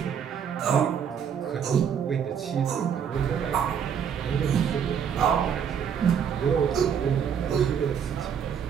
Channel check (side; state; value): left; quieter; 7.8 dB